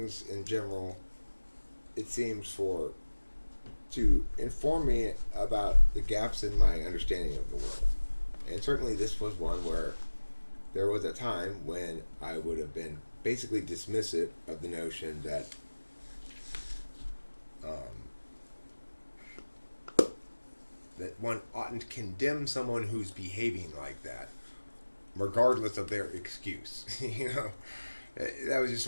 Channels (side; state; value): both; inverted; correlation -1.00